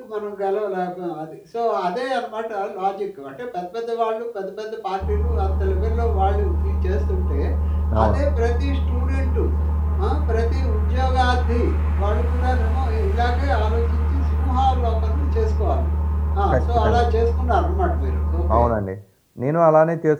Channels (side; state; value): both; identical; correlation 1.00